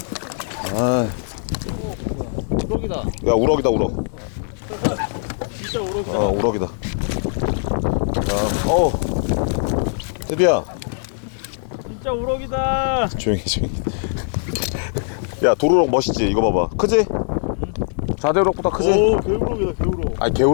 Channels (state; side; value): silent; right; digital silence